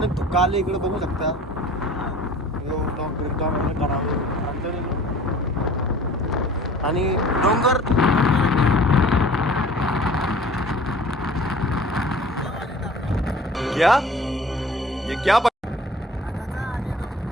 धुका आले इकडे बघू शकता. आणि डोंगर क्या ये क्या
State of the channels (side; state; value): both; normal; correlation 0.47